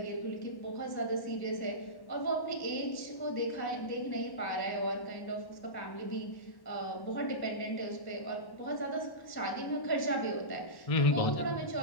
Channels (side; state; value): right; late; 1.1 ms